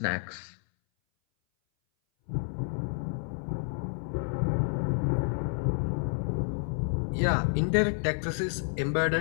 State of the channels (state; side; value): silent; right; 58 dB below the other